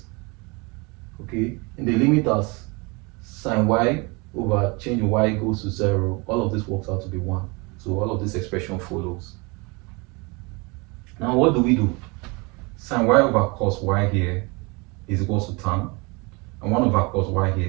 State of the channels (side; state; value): left; quieter; 28.0 dB